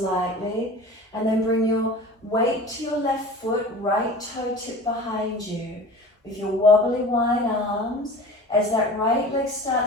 and then bring your weight to your left foot, right toe tip behind you. With your wobbly wide arms, as that right leg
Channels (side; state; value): both; normal; correlation 0.39